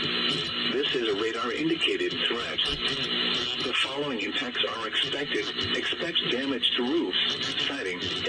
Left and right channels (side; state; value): both; identical; correlation 1.00